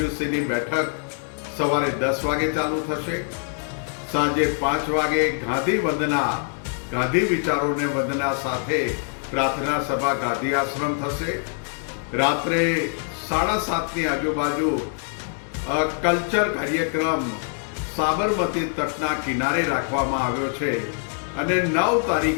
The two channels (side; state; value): right; silent; 59 dB below the other